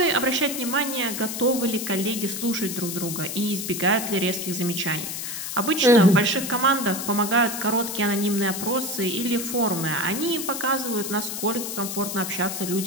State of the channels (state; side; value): noise; left; hiss, 5 dB below the sound